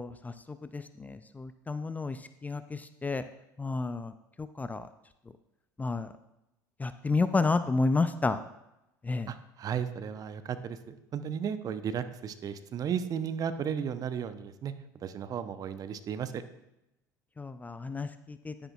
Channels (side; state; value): both; normal; correlation 0.76